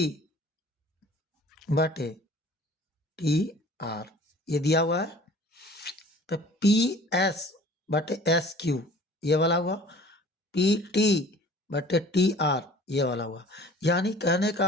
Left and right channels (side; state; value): both; normal; correlation 0.47